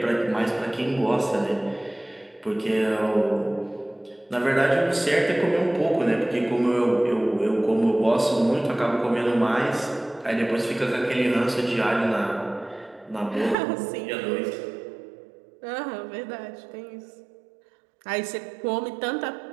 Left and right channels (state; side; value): drops out; left; at 13.6 s